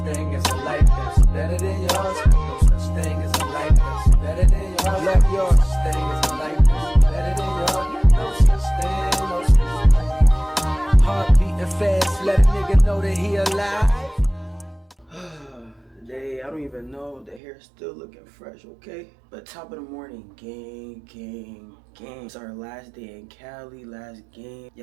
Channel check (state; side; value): drops out; left; at 17.4 s